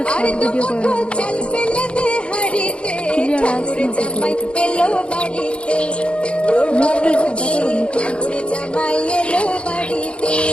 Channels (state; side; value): late; right; 0.058 ms